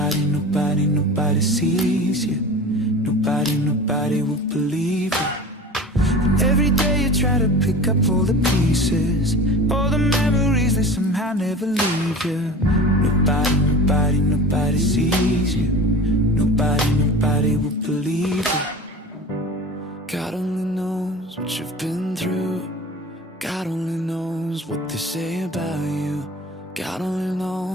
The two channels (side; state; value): both; normal; correlation 0.36